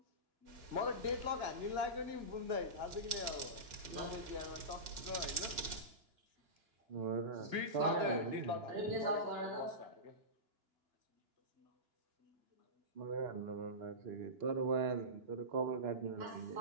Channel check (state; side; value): late; left; 2.9 ms